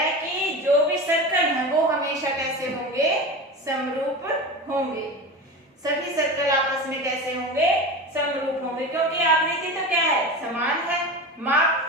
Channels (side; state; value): both; normal; correlation 0.28